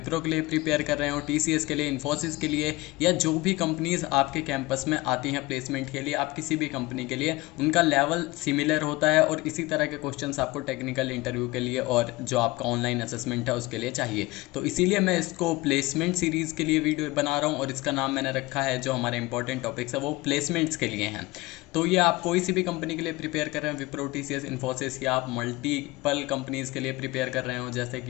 के लिए प्रिपेयर कर रहे हो, टीसीएस के लिए, इन्फोसिस के लिए, या जो भी कंपनीज आपके कैंपस में आती हैं प्लेसमेंट के लिए, आप किसी भी कंपनी के लिए, उनका लेवल सिमिलर होता है और इसी तरह के क्वेश्चंस आपको टेक्निकल इंटरव्यू के लिए और जो आपका ऑनलाइन असेसमेंट है उसके लिए चाहिए। तो इसीलिए मैं इसको प्लेसमेंट सीरीज़ के लिए वीडियो बना रहा हूँ और इसका नाम मैंने रखा है, जो हमारे इंपॉर्टेंट टॉपिक्स है वो प्लेसमेंट्स के लिए हैं। तो ये आप कोई सी भी कंपनी के लिए प्रिपेयर कर रहे हैं, विप्रो, टीसीएस, इन्फोसिस, या आप मल्टीपल कंपनीज़ के लिए प्रिपेयर कर रहे हो, जैसे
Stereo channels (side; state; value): right; quieter; 20.9 dB